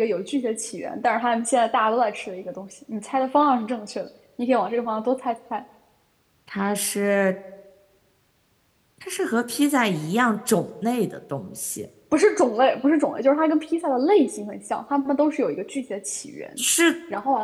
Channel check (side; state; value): both; identical; correlation 1.00